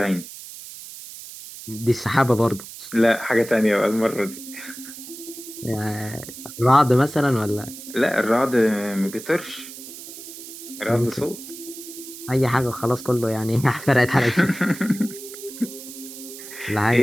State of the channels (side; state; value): right; noise; hiss, 13 dB below the sound